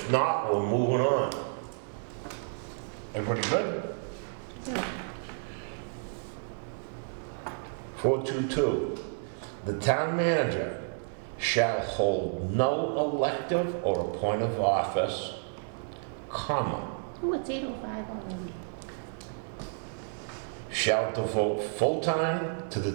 not, we're moving on. Everybody good? Yeah. 422, the town manager shall hold no elective or appointive office, comma, Oh, it's 8:05 already. shall devote full time to the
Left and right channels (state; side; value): silent; left; 57 dB below the other